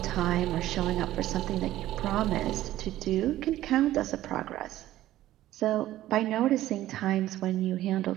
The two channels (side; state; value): left; quieter; 14.4 dB